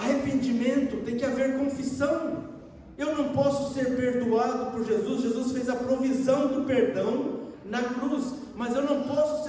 tem que haver confissão. Eu não posso ser perdoado por Jesus. Jesus fez a provisão do perdão na cruz, mas eu não posso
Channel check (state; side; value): identical; both; correlation 1.00